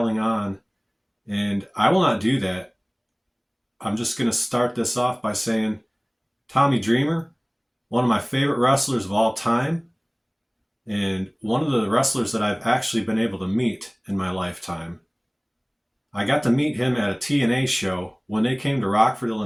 on, and I will not do that. I'm just going to start this off by saying Tommy Dreamer, one of my favorite wrestlers of all time, and one of the wrestlers that I've actually been able to meet in my lifetime. I got to meet him at a TNA show when they came to Rockford,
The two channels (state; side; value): identical; both; correlation 1.00